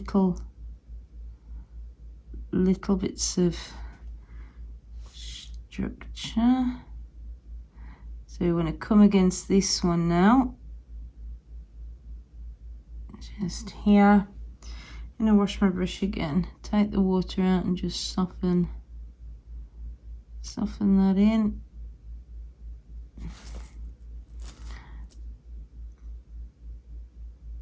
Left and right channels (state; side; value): identical; both; correlation 1.00